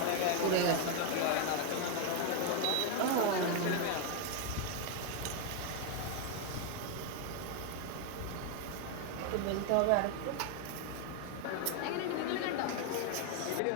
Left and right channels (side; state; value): both; different; correlation 0.01